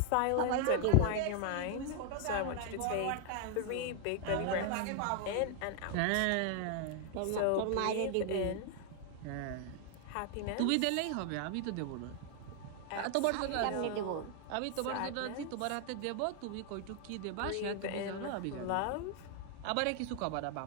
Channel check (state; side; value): different; both; correlation 0.00